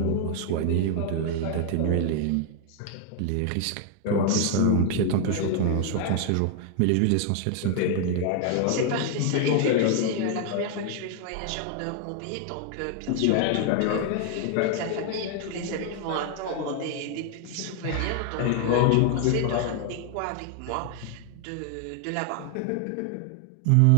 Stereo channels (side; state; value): both; different; correlation 0.00